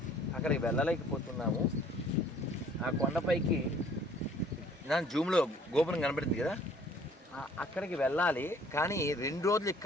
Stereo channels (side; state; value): both; normal; correlation 0.56